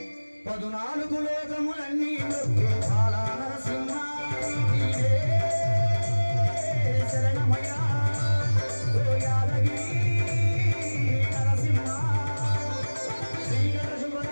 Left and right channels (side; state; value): both; inverted; correlation -1.00